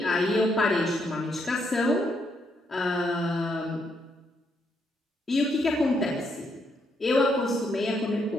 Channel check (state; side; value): normal; both; correlation 0.76